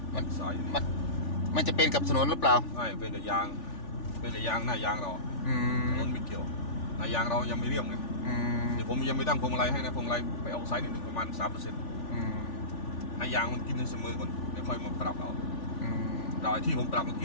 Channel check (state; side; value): late; right; 3.4 ms